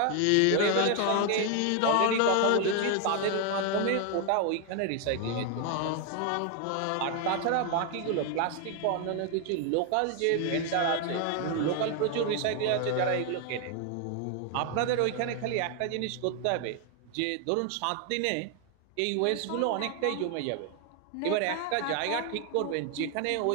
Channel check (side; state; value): both; different; correlation 0.00